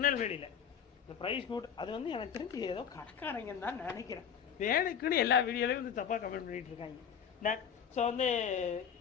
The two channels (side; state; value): right; quieter; 7.9 dB